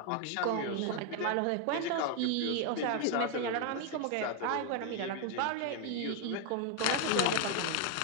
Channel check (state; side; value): different; both; correlation 0.01